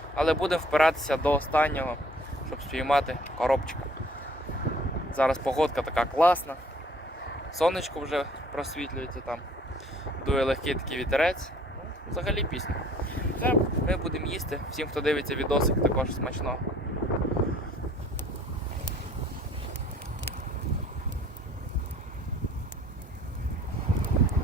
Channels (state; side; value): normal; both; correlation 0.55